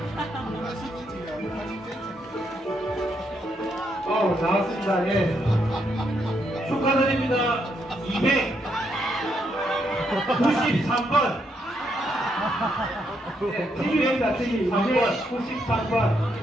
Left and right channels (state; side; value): normal; both; correlation 0.77